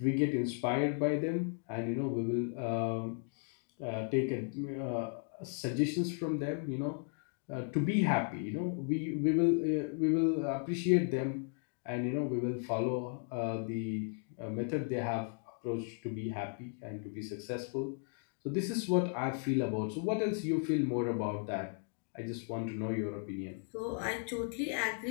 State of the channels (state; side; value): silent; right; 54 dB below the other